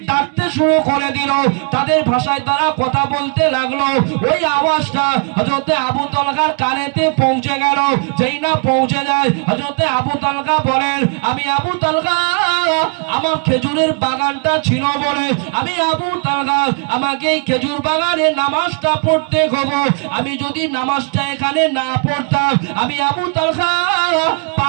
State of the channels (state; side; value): quieter; left; 39.6 dB